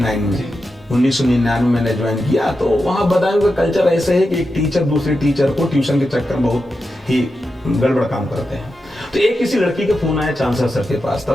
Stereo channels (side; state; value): both; normal; correlation 0.89